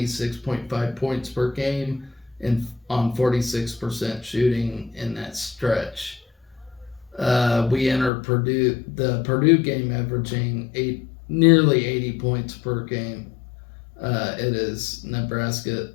points per game and on 46% shooting in that stretch. We entered the Purdue game averaging nearly 80 points per game. It is Nebraska's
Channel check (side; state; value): right; drops out; at 8.1 s